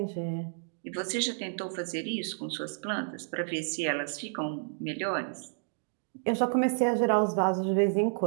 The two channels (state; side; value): silent; left; digital silence